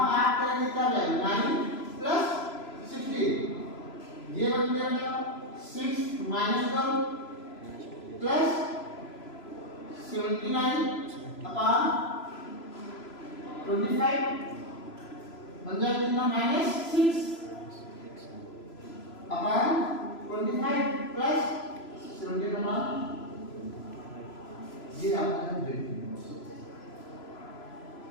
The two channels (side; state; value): right; late; 3.0 ms